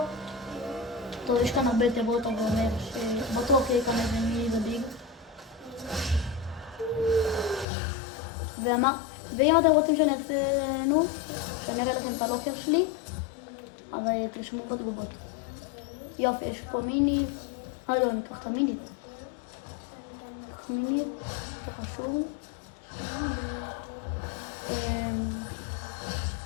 טוב, יש כאן הרבה תיבות, אבל אומר שבטוח יהיה כאן איזה מיני וביג. ואם אתם רוצים שאני אעשה, שאני אראה לכם את הלוקר שלי, אז תרשמו בתגובות. יופי, יש פה מיני. לא, אני אקח את המיני. מיני, חשוב.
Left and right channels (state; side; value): drops out; right; at 7.7 s